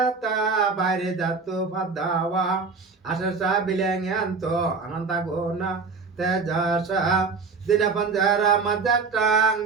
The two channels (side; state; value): left; quieter; 4.6 dB